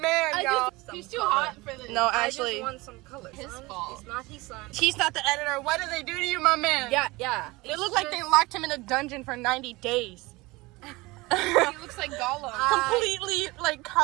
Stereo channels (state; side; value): quieter; left; 22.3 dB